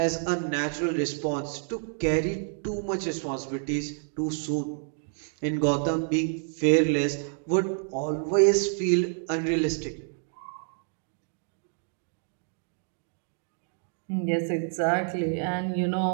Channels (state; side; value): silent; left; 59 dB below the other